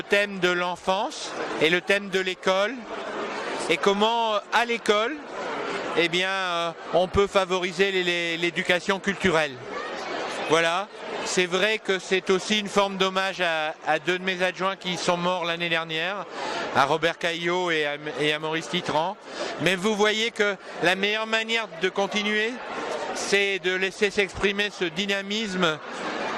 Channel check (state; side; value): identical; both; correlation 1.00